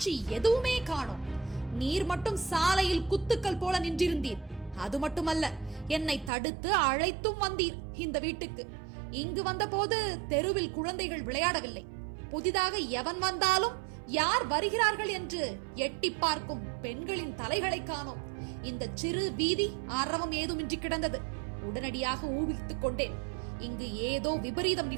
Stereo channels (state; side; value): drops out; left; at 6.3 s